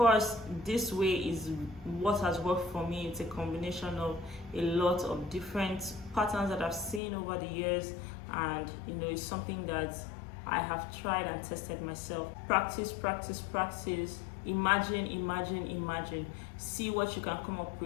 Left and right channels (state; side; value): drops out; right; at 7.0 s